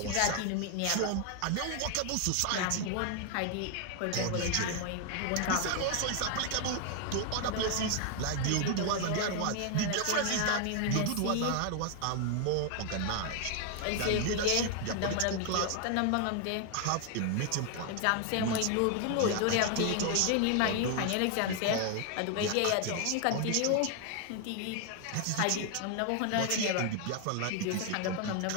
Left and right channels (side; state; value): both; different; correlation 0.00